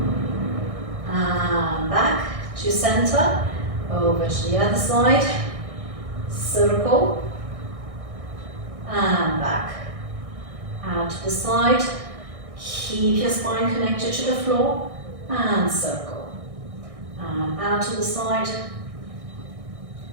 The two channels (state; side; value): late; left; 1.6 ms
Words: and back to center, over to the other side, circle and back, out to the side, keep your spine connected to the floor and circle, and out to the side,